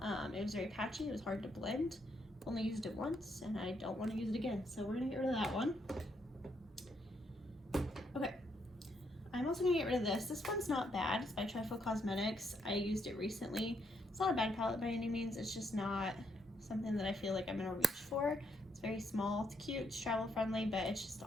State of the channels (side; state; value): both; normal; correlation 0.75